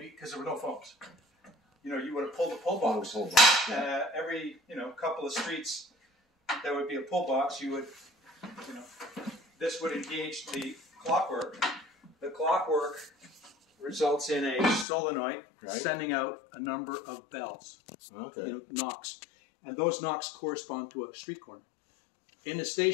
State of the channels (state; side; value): drops out; right; at 14.9 s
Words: because there were no phones, you know, you would have pulled the pull box. Every, you know, couple of streets, there would be a pull box. You would, you know, this would engage the clockwork. The clockwork results in a solenoid sending out a number of bells, you know, knocks. And those knocks correspond to a street corner. In the